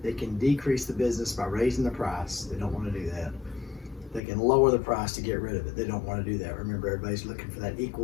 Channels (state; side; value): drops out; right; at 4.2 s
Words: they can decrease the business by raising the price. They don't want to do that. They can lower the price to get rid of it. They don't want to do that. Remember, everybody's looking for that